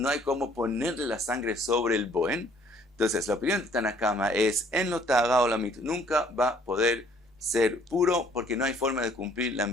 hay cómo ponerle la sangre sobre el boen. Entonces la opinión de Tanakama es en lo ta'ara o la mit, nunca va a poder ser puro porque no hay forma de cumplir la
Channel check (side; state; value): both; normal; correlation 0.60